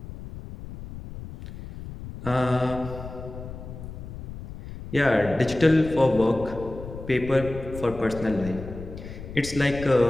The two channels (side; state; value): left; noise; rumble, 12 dB below the sound